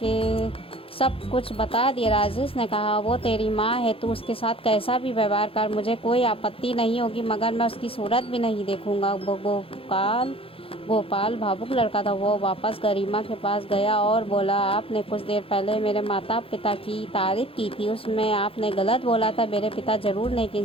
सब कुछ बता दिया। राजेश ने कहा, वो तेरी माँ है, तू उसके साथ कैसा भी व्यवहार कर, मुझे कोई आपत्ति नहीं होगी, मगर मैं उसकी सूरत भी नहीं देखूंगा। गोपाल भावुक लड़का था। वो वापस गरिमा के पास गया और बोला, आपने कुछ देर पहले मेरे माता पिता की तारीफ की थी, उसमें आपने गलत बोला था। मेरे पिता जरूर नेक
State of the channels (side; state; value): right; late; 0.27 ms